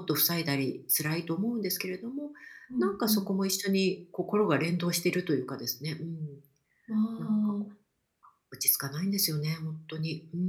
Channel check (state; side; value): identical; both; correlation 1.00